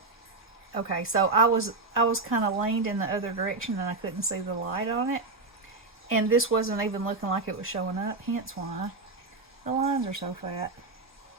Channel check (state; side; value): quieter; left; 3.5 dB